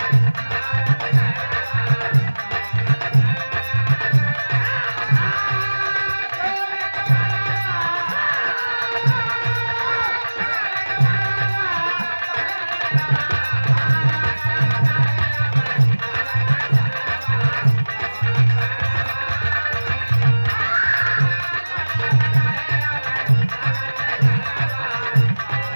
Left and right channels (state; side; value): inverted; both; correlation -1.00